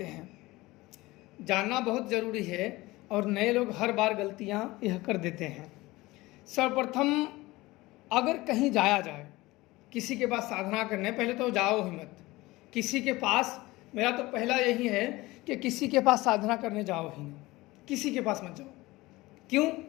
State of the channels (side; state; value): right; quieter; 20.1 dB